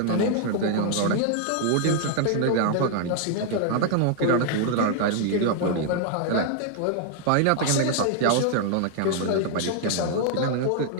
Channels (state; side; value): different; both; correlation 0.00